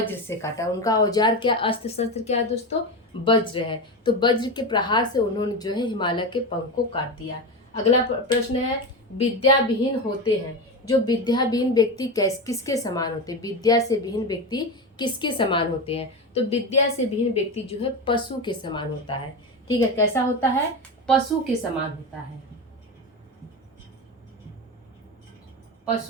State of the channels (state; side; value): normal; both; correlation 0.19